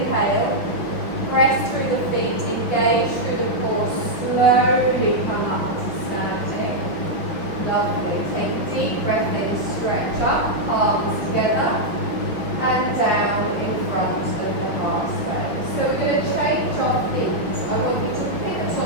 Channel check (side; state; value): right; late; 5.7 ms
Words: press through the feet, engage through the core, slowly come up to standing. Lovely. Take a deep breath in, stretch up, palms together, and down in front of the heart space. So we're going to change our feet. I want you to pivot